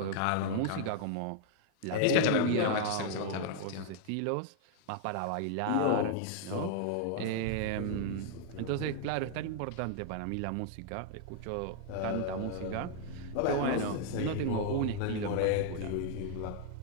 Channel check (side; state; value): both; different; correlation -0.01